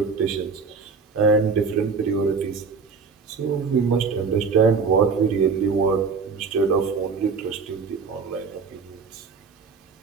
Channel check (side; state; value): left; quieter; 5.2 dB